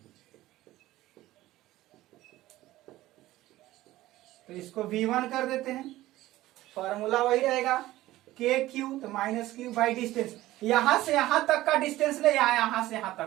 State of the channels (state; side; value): quieter; left; 16.3 dB